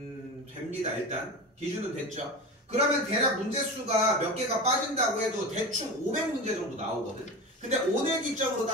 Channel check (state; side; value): normal; both; correlation 0.27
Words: 됩니다. 일단 기준은 됐죠? 그러면 대략 문제수가 몇 개가 빠진다고 해도 대충 500문제 정도 나오거든. 근데 오늘 기점으로